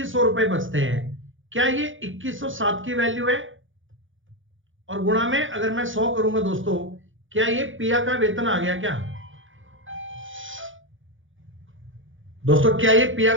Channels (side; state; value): left; late; 0.57 ms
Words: रुपए बचते हैं। क्या ये 2107 की वैल्यू है? और गुणा में अगर मैं 100 करूंगा दोस्तों, क्या ये पिया का वेतन आ गया क्या? दोस्तों क्या ये पिया